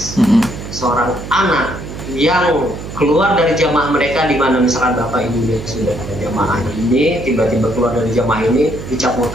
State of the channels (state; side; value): noise; right; hum, 10 dB below the sound